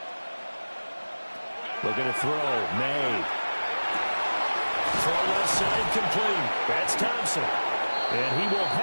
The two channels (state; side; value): inverted; both; correlation -1.00